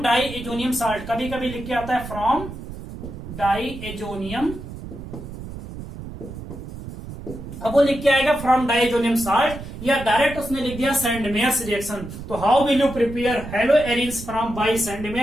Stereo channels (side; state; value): right; noise; rumble, 11 dB below the sound